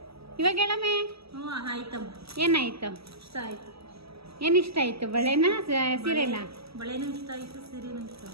ಇವಾಗ ಹೇಳಮ್ಮೆ. ಆಯ್ತಮ್ಮ. ಏನಾಯ್ತು? ಇಷ್ಟ ಆಯ್ತು. ಏನು ಇಷ್ಟ ಆಯ್ತು? ಬಳೆನಾ ಸೀರೆನಾ? ಬಳೆನೂ ಇಷ್ಟ ಆಯ್ತು, ಸೀರೆನೂ ಇಷ್ಟ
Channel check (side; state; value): left; late; 0.77 ms